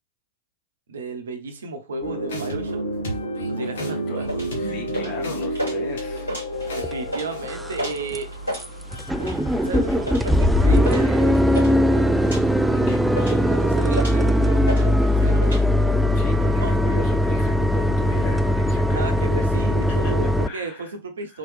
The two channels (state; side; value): normal; both; correlation 0.70